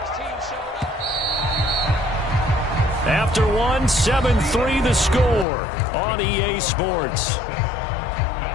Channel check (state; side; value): drops out; right; at 5.5 s